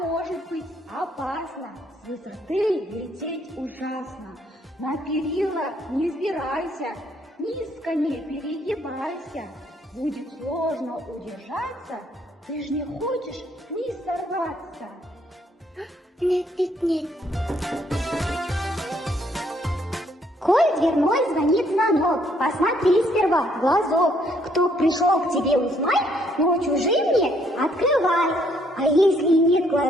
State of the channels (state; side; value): normal; both; correlation 0.68